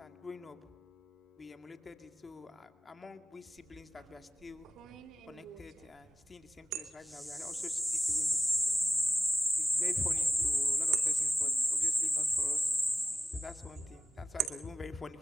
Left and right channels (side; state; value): both; normal; correlation 0.96